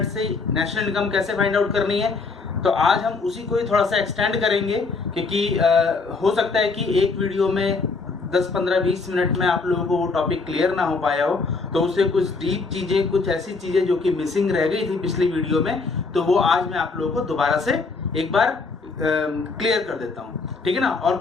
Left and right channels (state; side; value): quieter; right; 4.2 dB